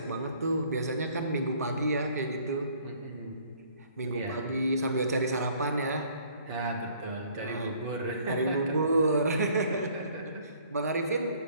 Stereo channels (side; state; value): both; inverted; correlation -0.58